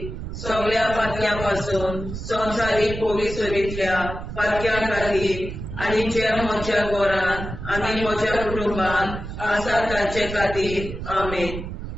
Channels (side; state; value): right; noise; rumble, 8 dB below the sound